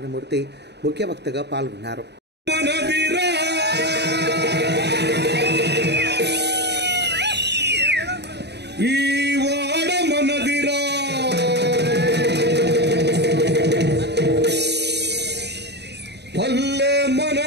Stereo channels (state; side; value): late; left; 0.49 ms